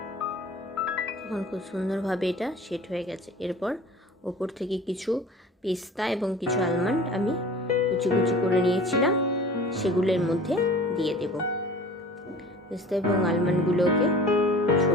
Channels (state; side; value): normal; both; correlation 0.42